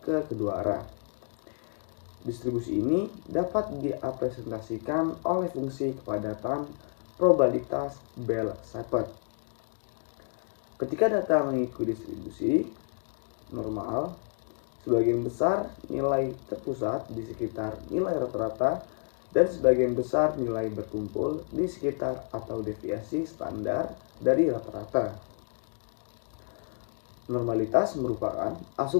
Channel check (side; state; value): right; silent; 55 dB below the other